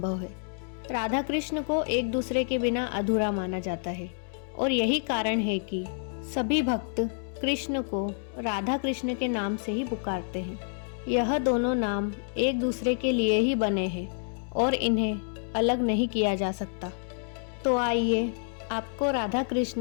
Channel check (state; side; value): silent; right; digital silence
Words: है। राधा कृष्ण को एक दूसरे के बिना अधूरा माना जाता है और यही कारण है कि सभी भक्त कृष्ण को राधा कृष्ण के नाम से ही पुकारते हैं। यह दोनों नाम एक दूसरे के लिए ही बने हैं और इन्हें अलग नहीं किया जा सकता। तो आइए आपको राधा